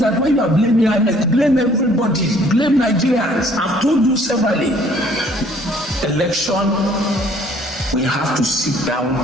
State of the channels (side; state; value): both; normal; correlation 0.59